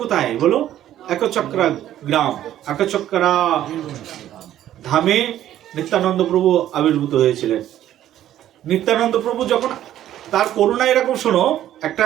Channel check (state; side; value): quieter; left; 12.2 dB